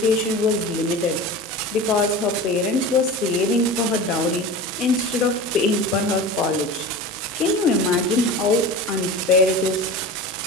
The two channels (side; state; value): both; normal; correlation 0.32